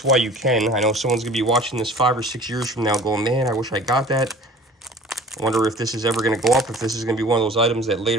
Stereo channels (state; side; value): normal; both; correlation 0.45